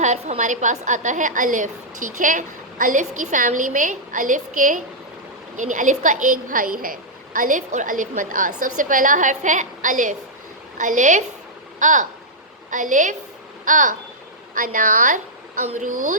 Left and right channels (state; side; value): normal; both; correlation -0.08